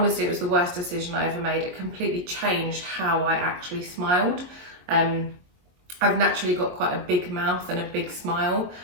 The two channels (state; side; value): late; left; 22 ms